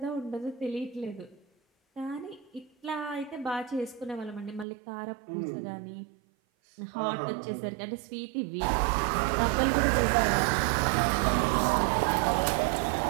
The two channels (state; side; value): drops out; left; at 4.7 s